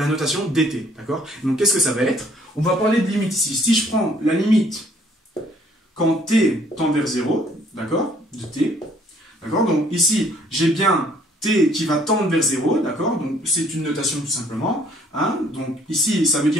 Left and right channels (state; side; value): normal; both; correlation 0.61